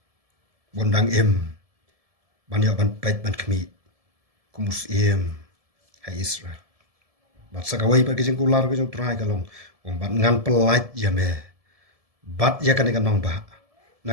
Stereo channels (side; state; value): left; late; 1.7 ms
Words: Bondang em, ban yo ban pait ban kmi, kumus em. Hai Israel. Bat sakawai pa kijing kular kijing try kalong. Ong bat ngan pelait ya me. Bat ya kan ikan nong ba.